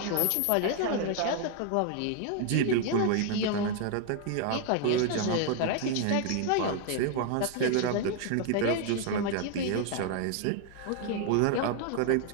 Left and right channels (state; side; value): different; both; correlation 0.00